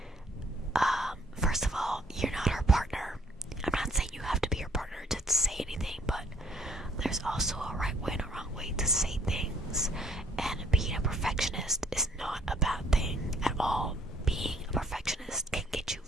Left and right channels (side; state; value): both; normal; correlation 0.63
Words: first of all, you're not her partner. I'm not saying you have to be her partner to say anything, but there's also a right way and a wrong way to say things. And being a perfectionist is not a bad thing at all. Being a perfectionist can get you